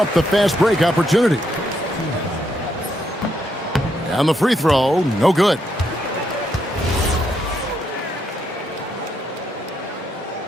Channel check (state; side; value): normal; both; correlation 0.77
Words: the fast break opportunity. And the free throw, no good.